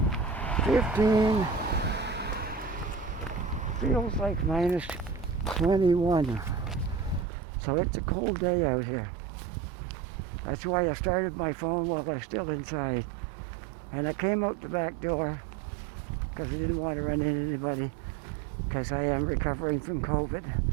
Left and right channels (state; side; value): drops out; left; at 7.2 s